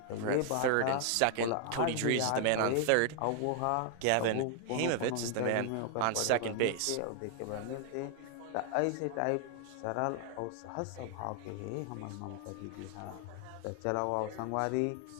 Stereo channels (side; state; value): both; different; correlation 0.00